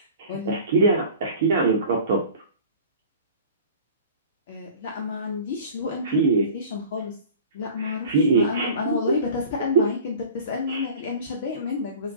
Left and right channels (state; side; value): inverted; both; correlation -0.41